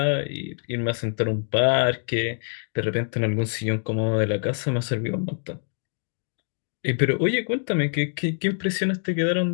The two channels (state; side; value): silent; right; digital silence